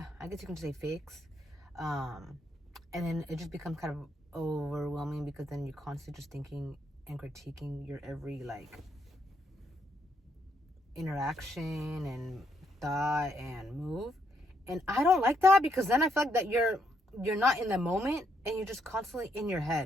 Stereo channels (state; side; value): normal; both; correlation 0.75